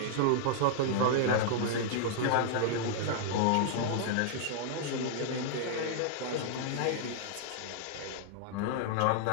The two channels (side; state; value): both; different; correlation -0.01